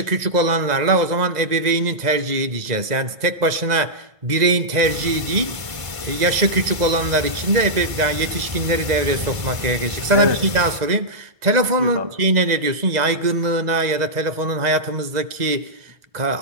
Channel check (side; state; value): left; late; 2.0 ms